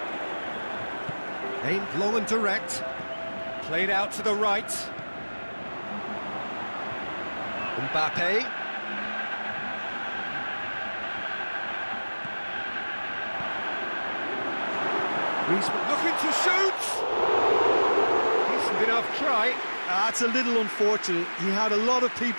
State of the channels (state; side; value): inverted; both; correlation -1.00